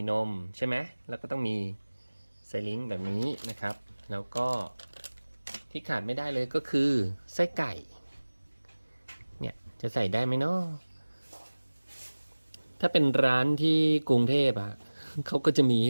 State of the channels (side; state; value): both; inverted; correlation -1.00